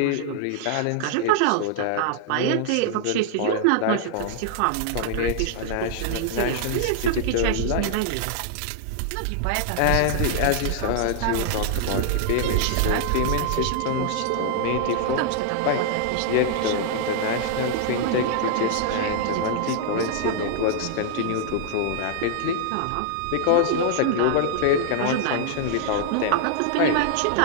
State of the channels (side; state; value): both; different; correlation -0.01